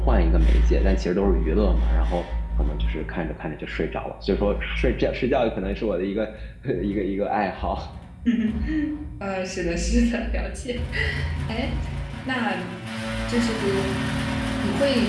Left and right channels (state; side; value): identical; both; correlation 1.00